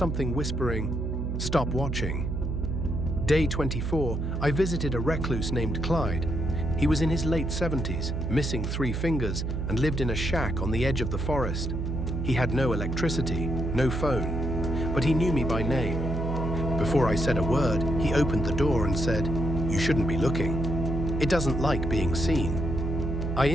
whispering, "Stop watching." Day 24, I visited a recluse named Clyde. He was in his late 70s, missing 3 fingers, and lived in a shack on the edge of the forest. He had no electricity, no phone, but he knew me by name. Before I said a word, he opened the door and said, "You shouldn't be looking. It doesn't like being seen." I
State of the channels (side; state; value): right; noise; hum, 2 dB below the sound